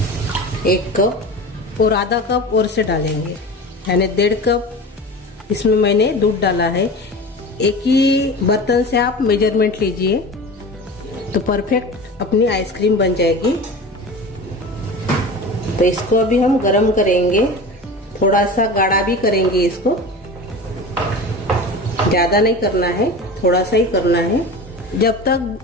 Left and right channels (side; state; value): both; normal; correlation 0.33